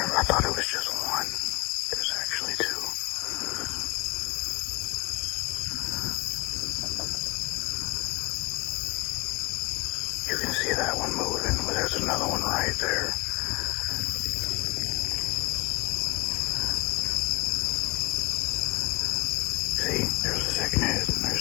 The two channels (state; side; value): quieter; right; 25.4 dB